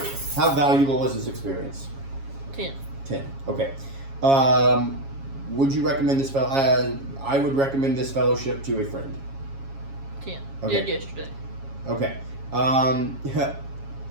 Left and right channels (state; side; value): late; left; 7.3 ms